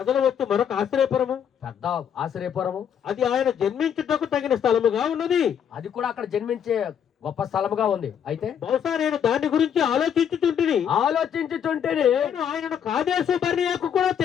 వస్తు మరొక ఆశ్రయపురము, పెద్ద ఆశ్రయపురము. అది ఆయన జన్మించుటకు తగిన స్థలముగా ఉన్నది. అది కూడా అక్కడ జన్మించే గొప్ప స్థలముగా ఉంది. అయితే బహుశా నేను దాని గురించి ఆలోచించుతుంటే ఆయనను కాదేశు బర్నియాకు కూడా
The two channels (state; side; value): quieter; right; 8.5 dB